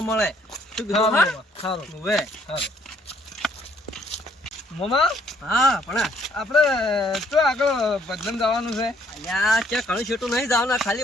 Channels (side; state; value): both; normal; correlation 0.65